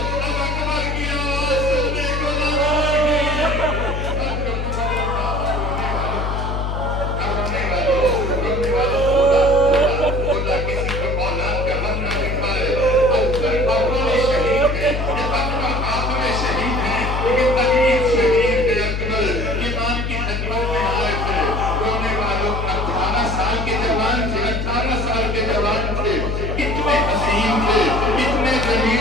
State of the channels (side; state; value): left; noise; hum, 2 dB below the sound